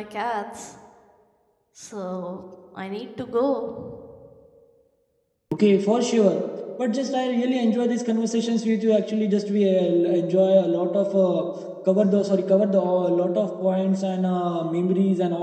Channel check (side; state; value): both; identical; correlation 1.00